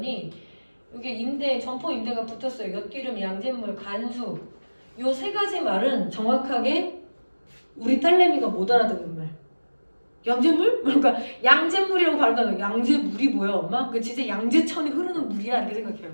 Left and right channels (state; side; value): inverted; both; correlation -1.00